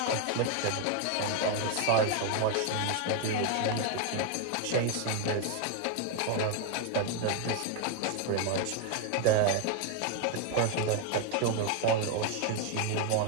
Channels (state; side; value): different; both; correlation 0.01